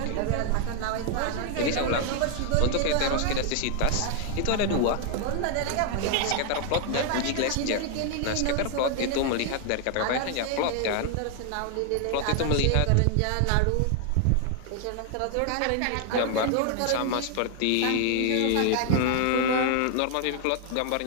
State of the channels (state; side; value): different; both; correlation 0.00